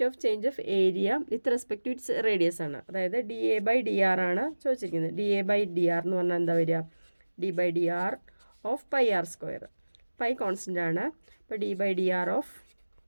of change of area with respect to its radius ആണ്. അതായത് d A by d r ആണ് ചോദിച്ചിരിക്കുന്നത്. D A by d r എന്ന് പറഞ്ഞാൽ എന്താ വരിക, D by d r of pi r square. Pi constant ആണ്. അപ്പോൾ d by d r of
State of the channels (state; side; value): inverted; both; correlation -1.00